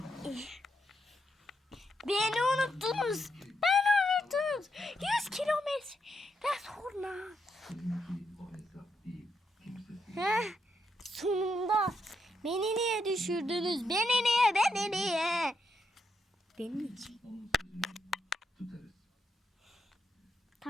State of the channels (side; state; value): both; normal; correlation 0.80